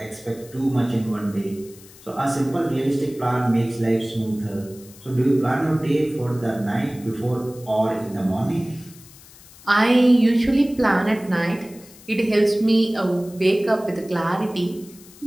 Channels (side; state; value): left; noise; hiss, 22 dB below the sound